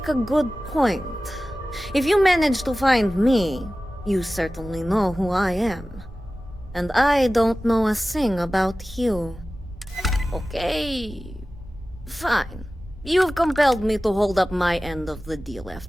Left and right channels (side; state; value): both; normal; correlation 0.96